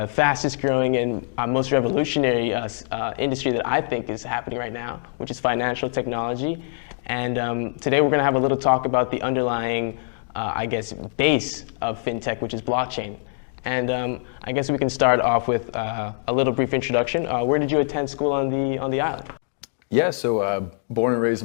fastest growing and most revolutionary industry that I think is happening right now, which is financial technology. And today we're going to have a little talk about the underlying base of fintech, which is blockchain. And I guess we can start off with a little brief introduction. Where did you attend school on the island? Yeah, so born and raised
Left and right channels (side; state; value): right; silent; digital silence